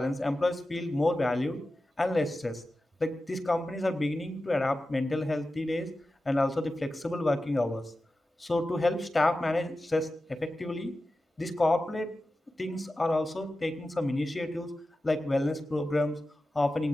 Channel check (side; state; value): both; normal; correlation 0.93